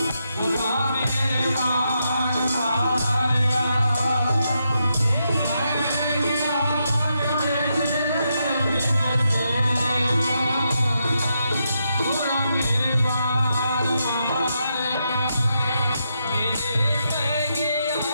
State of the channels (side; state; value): both; inverted; correlation -0.82